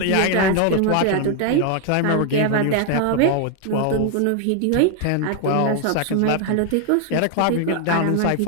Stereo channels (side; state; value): both; different; correlation 0.00